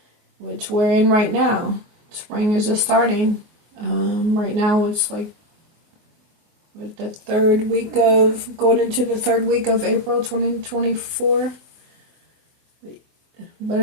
Which we're in right now. Spring is just starting. Right now it's like with the going into the third week of April 2024. But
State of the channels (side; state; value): left; late; 24 ms